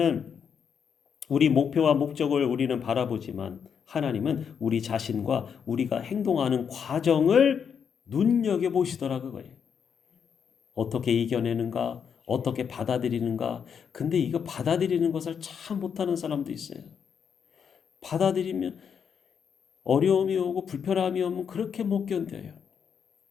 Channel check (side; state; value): right; quieter; 7.2 dB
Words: 목적을 우리는 바라보지만 하나님은 우리 자신과 우리가 행동하는 과정을 눈여겨보시더라 그거예요. 어떻게 이겨내는가? 어떻게 받아들이는가? 근데 이거 받아들이는 것을 참 못하는 사람도 있어요. 받아들이면 어려움이 오고 불편함이 오면 그렇게 못 견뎌요.